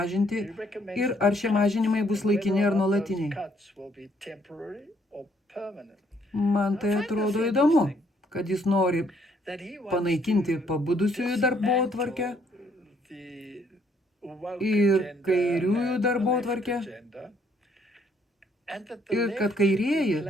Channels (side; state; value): both; normal; correlation 0.67